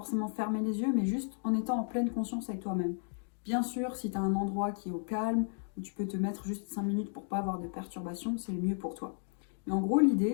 fermer les yeux, mais juste en étant en pleine conscience avec toi-même. Bien sûr, si tu as un endroit qui est au calme, où tu peux te mettre juste 5 minutes pour pas avoir de perturbations, c'est le mieux pour toi. Mais en gros,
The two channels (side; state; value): right; silent; 55 dB below the other